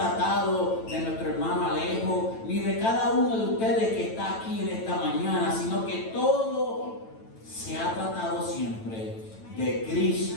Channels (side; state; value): right; late; 9.0 ms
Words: de nuestro hermano Alejo, ni de cada uno de ustedes que está aquí en esta mañana, sino que todo se ha tratado siempre de